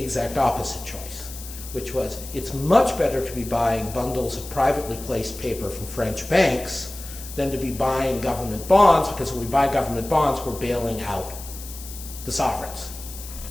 exact opposite choice, which was it's much better to be buying bundles of privately placed paper from French banks than to be buying government bonds, because when we buy government bonds, we're bailing out the sovereigns.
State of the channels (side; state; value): left; noise; hiss, 13 dB below the sound